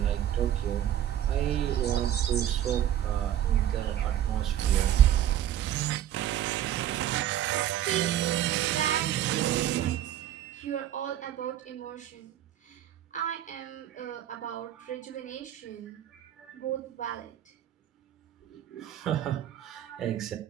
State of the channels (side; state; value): left; quieter; 11.3 dB